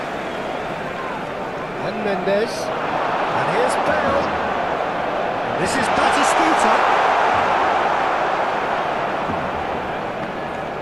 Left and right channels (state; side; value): noise; left; rumble, 24 dB below the sound